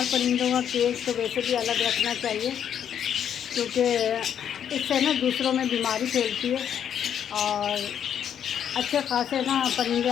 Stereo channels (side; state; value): right; quieter; 9.0 dB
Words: परिंदों का केज तो वैसे भी अलग रखना चाहिए, क्योंकि इससे ना दूसरों में बीमारी फैलती है और अच्छे खासे ना परिंदे